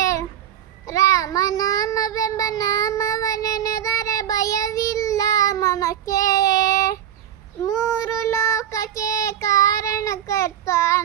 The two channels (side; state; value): left; quieter; 10.4 dB